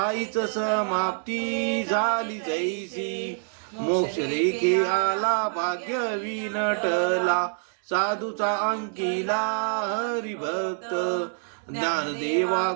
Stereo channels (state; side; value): silent; left; 55 dB below the other